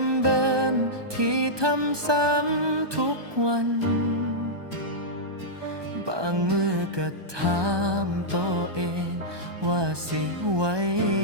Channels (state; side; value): late; left; 1.2 ms